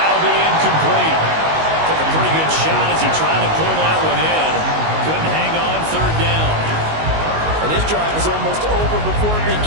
be incomplete. Took a pretty good shot as he tried to pull that one in. Couldn't hang on 3rd down. And this drive was almost over before it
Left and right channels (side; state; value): left; late; 19 ms